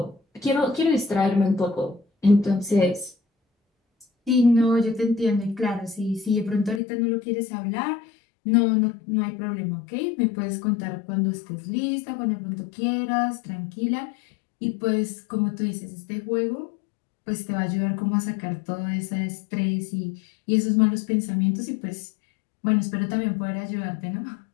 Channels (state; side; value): drops out; right; at 6.8 s